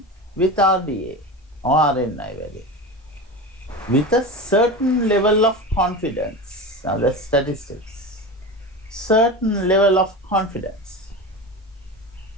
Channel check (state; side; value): normal; both; correlation 0.27